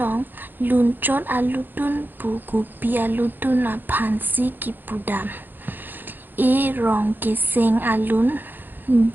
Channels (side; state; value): left; late; 0.091 ms